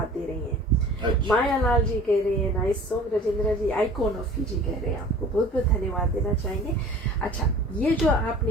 दे रही हैं। माया लाल जी कह रहे हैं nice song, Rajendra ji icon of Fiji कह रहे हैं, आपको बहुत बहुत धन्यवाद देना चाहेंगे। अच्छा, ये जो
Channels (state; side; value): normal; both; correlation 0.45